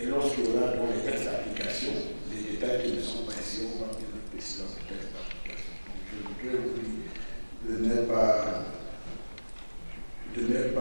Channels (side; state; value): both; inverted; correlation -1.00